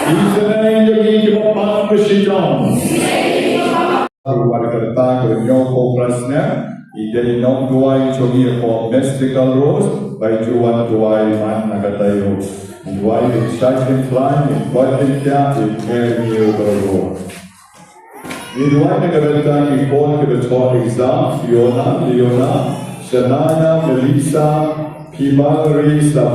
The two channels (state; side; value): identical; both; correlation 1.00